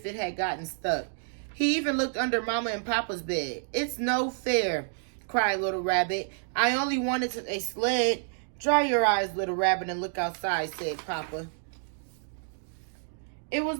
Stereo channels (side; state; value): left; silent; 59 dB below the other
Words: it had gotten stuck. He even looked under Mama and Papa's bed. "It's no fair," cried Little Rabbit. "I only wanted a sled." "Dry your eyes, Little Rabbit, and look outside," said Papa. It was